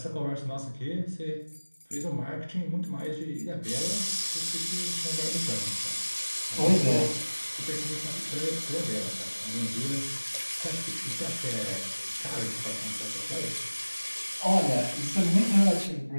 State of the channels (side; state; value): both; inverted; correlation -1.00